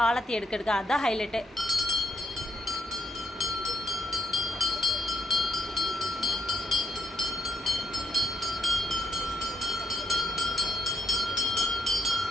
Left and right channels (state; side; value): normal; both; correlation 0.77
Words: ஆலத்தி எடுக்க அதுதான் ஹைலைட்டு.